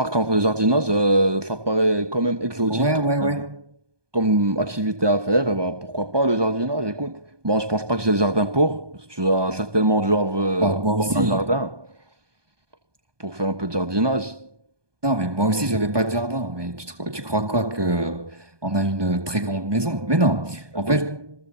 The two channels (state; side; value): late; left; 1.2 ms